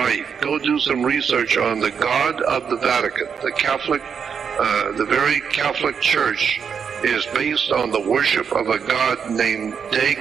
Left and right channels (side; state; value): left; quieter; 6.8 dB